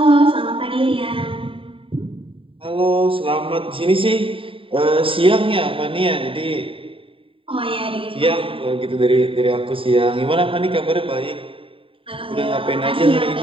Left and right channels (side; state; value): left; late; 0.26 ms